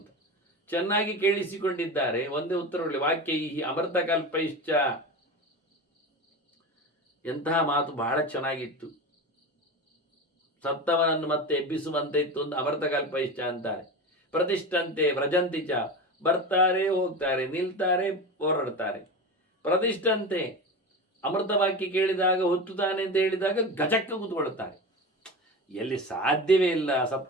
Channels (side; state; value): both; normal; correlation 0.26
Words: ಚೆನ್ನಾಗಿ ಕೇಳಿಸಿಕೊಂಡಿದ್ದಾರೆ. ಒಂದೇ ಉತ್ತರಗಳು ವಾಕ್ಯ ಈ ಅಮೃತ ಕಲ್ಪೈಶ್ಚ. ಎಂತಹ ಮಾತು, ಬಹಳ ಚೆನ್ನಾಗಿತ್ತು. ಸತ್ತವನನ್ನು ಮತ್ತೆ ಎಬ್ಬಿಸುವಂತೆ ಇತ್ತು ಅಂತ ಅಮೃತ ಕಲ್ಪೈಶ್ಚ ಅಂತಾರೆ. ಪ್ರತಿಷ್ಠಂತೆ ವ್ರಜಂತಿಚ, ಬರ್ತಾರೆ ಹೋಗ್ತಾರೆ, ನಿಲ್ತಾರೆ ಹೋರಾಡ್ತಾರೆ. ಪ್ರತಿಷ್ಠಂತೆ, ಅಮೃತ ವಾಕ್ಯ ಕೇಳಿದಾಗ ಹುತ್ತುತ್ತಾನೆ ಅಂತ ಹೇಳಿದಾಗ ಗಜಕ್ಕ ಕೂತ್ಕೊಳ್ತಾರೆ. ಎಲ್ಲಿ ಸಾಧ್ಯವೇ ಇಲ್ಲ